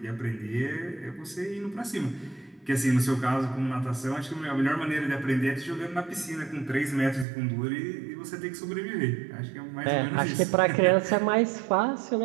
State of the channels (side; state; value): left; drops out; at 7.2 s